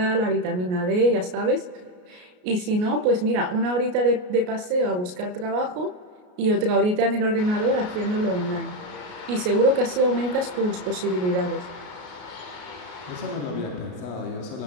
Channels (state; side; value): late; left; 33 ms